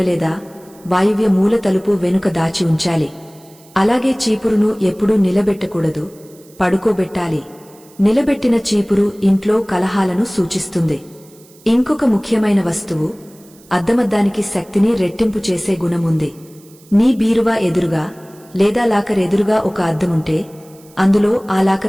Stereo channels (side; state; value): right; noise; hiss, 27 dB below the sound